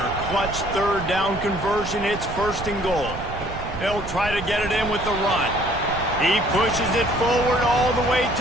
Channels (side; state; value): right; noise; rumble, 10 dB below the sound